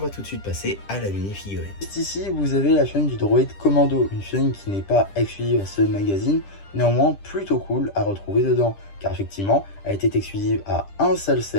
tout de suite passer à la mini-figurine. Juste ici, vous avez la chaîne du droïde Commando, une chaîne qui n'est pas exclusive à ce magazine, néanmoins plutôt cool à retrouver dedans, car effectivement, elle était exclusive à un seul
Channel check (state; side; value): late; right; 10 ms